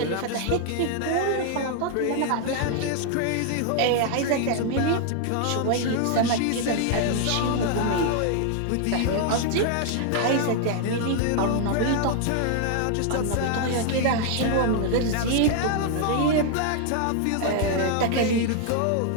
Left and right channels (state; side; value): different; both; correlation 0.00